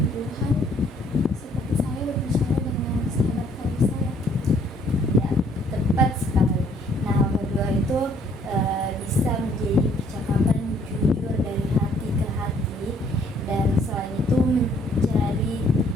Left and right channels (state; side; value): normal; both; correlation 0.63